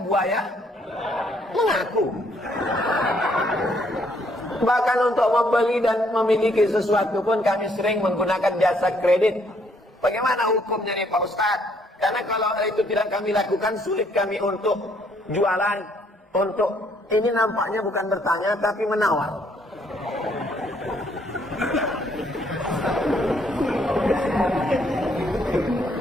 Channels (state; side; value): normal; both; correlation 0.68